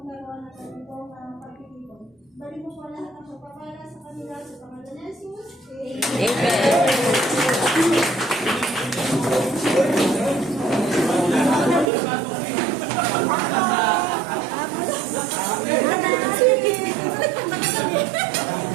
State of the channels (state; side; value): drops out; left; at 11.9 s